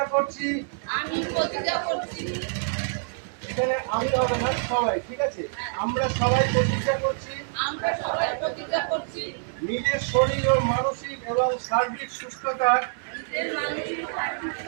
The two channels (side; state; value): left; silent; digital silence